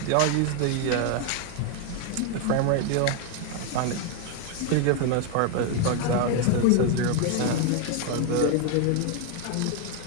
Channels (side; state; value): both; different; correlation 0.01